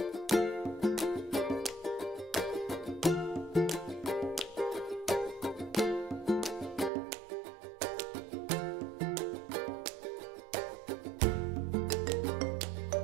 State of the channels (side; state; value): left; drops out; at 6.9 s